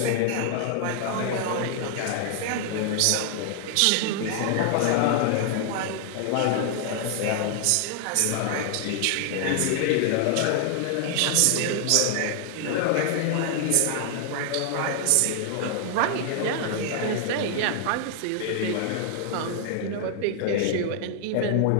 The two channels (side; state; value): both; different; correlation 0.00